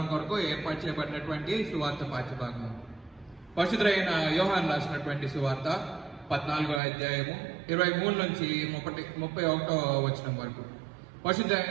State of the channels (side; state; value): left; drops out; at 6.8 s